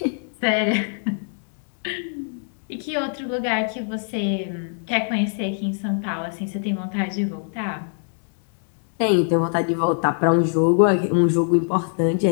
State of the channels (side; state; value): right; silent; 63 dB below the other